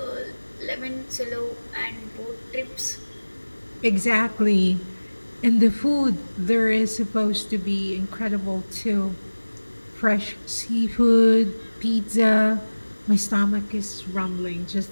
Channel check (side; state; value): both; inverted; correlation -1.00